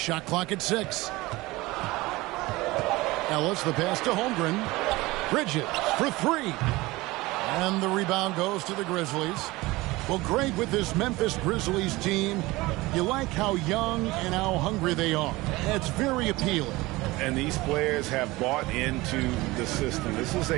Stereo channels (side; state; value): left; quieter; 20.7 dB